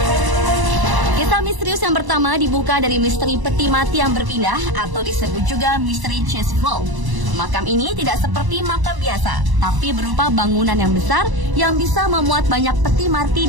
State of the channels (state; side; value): late; left; 1.0 ms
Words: Misterius yang pertama dibuka dari misteri peti mati yang berpindah atau disebut juga misteri chest vault. Makam ini tidak seperti makam biasa, tapi berupa bangunan yang besar yang bisa memuat banyak peti mati